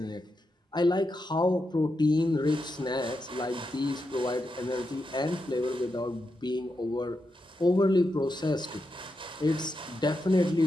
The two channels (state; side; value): normal; both; correlation 0.86